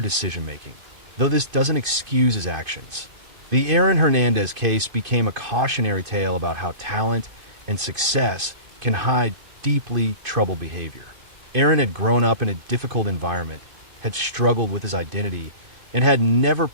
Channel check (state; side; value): late; left; 2.5 ms